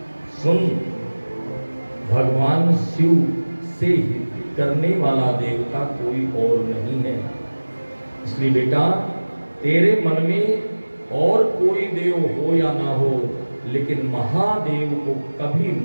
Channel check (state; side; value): inverted; both; correlation -1.00